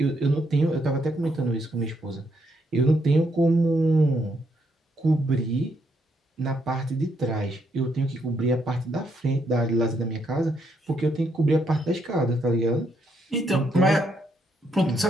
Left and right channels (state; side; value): normal; both; correlation 0.75